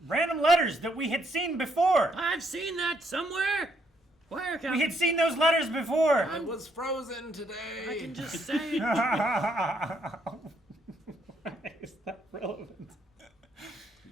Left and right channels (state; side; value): normal; both; correlation 0.72